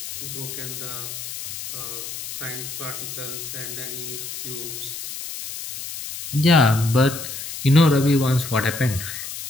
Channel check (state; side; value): noise; left; hiss, 8 dB below the sound